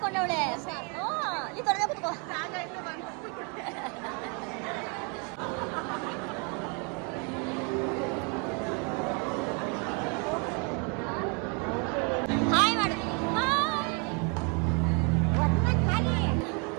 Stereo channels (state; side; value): quieter; left; 34.8 dB